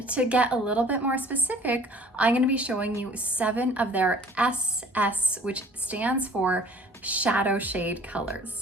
to get a little bit more specific, I'm going to be showing you 7 of their SS, which stands for shadow shade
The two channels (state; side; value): normal; both; correlation 0.50